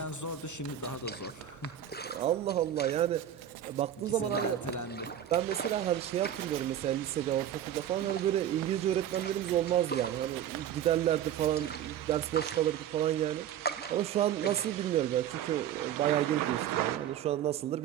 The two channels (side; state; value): left; quieter; 10.4 dB